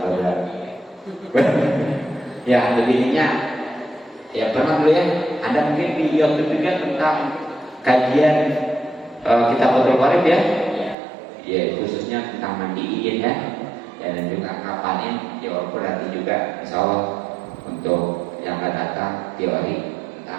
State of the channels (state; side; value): drops out; left; at 11.0 s